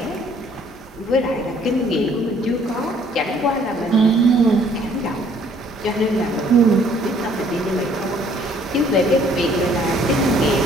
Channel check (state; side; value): normal; both; correlation 0.60